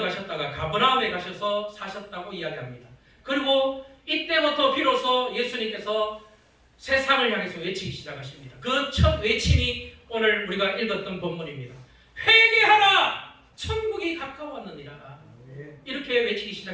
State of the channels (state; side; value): identical; both; correlation 1.00